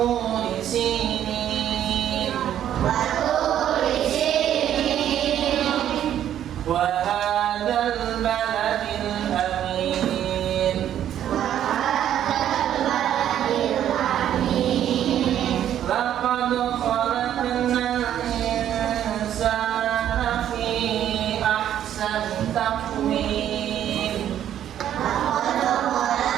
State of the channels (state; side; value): quieter; left; 10.7 dB